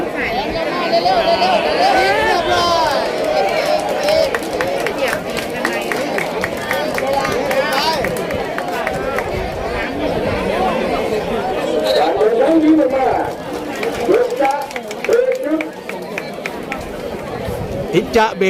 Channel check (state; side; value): identical; both; correlation 1.00